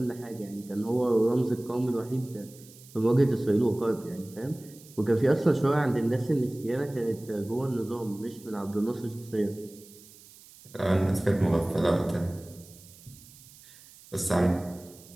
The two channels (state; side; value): noise; right; hiss, 22 dB below the sound